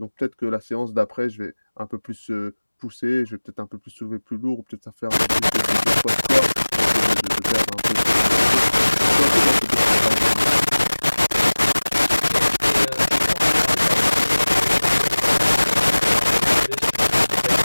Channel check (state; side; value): inverted; both; correlation -1.00